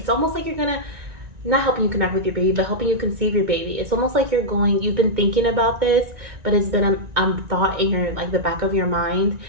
almost like you're gonna not helping you connect with your baby, but helping you conceive your baby. It's almost like you've been thinking about this, but it's been a thought in your, like the back of your mind.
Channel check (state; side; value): late; left; 1.9 ms